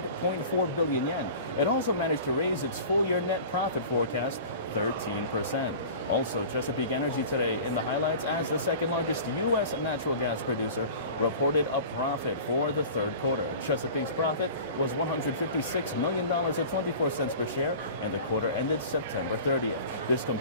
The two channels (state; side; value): inverted; both; correlation -0.39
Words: billion yen. It also managed to raise its full-year net profit forecast 13%. Also, Chesapeake Energy today in the highlights as the second largest U.S. natural gas producer reported a profit for the third quarter. Chesapeake's profit was $156 million at 24 cents per share, and the quarter ended September 30th. This